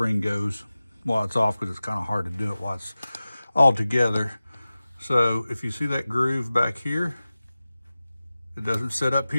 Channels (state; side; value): inverted; both; correlation -0.96